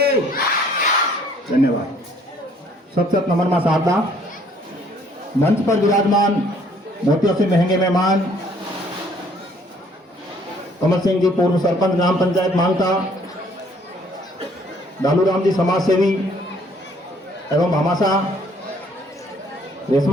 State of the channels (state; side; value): normal; both; correlation 0.61